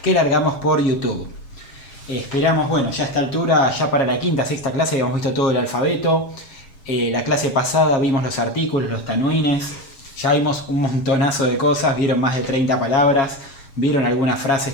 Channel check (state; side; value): late; right; 7.3 ms